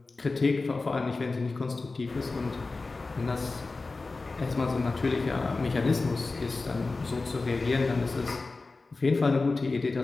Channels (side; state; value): right; quieter; 3.7 dB